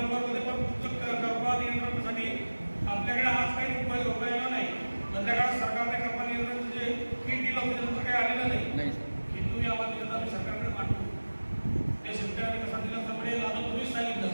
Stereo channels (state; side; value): inverted; both; correlation -1.00